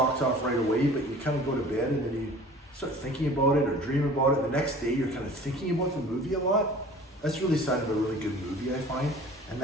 off right away, but you kind of go to bed and then you start thinking about it or dream about it. The next day you're kind of thinking about the movie a lot. That's really a sign of a really good movie, I find. And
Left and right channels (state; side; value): normal; both; correlation 0.45